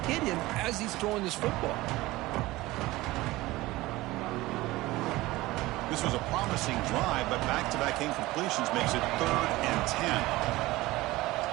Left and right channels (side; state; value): left; quieter; 19.0 dB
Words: hit him as he's throwing this football. This was a promising drive, but back-to-back incompletions makes it 3rd and 10.